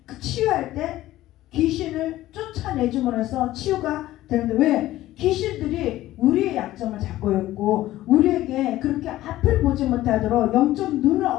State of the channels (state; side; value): quieter; right; 15.3 dB